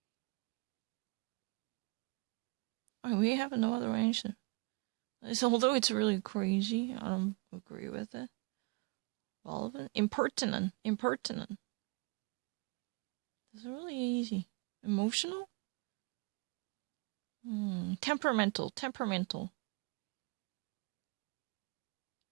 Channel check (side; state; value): left; quieter; 28.0 dB